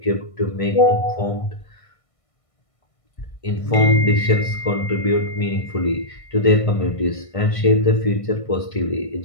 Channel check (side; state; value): right; late; 1.5 ms